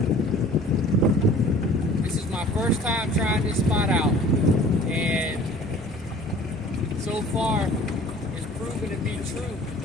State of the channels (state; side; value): normal; both; correlation 0.48